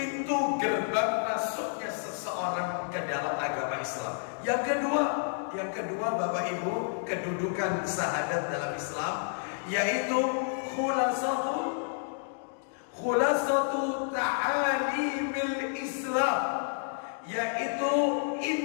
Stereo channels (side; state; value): right; silent; digital silence